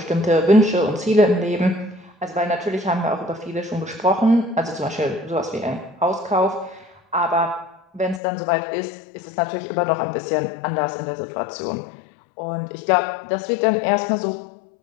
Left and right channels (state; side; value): drops out; right; at 8.2 s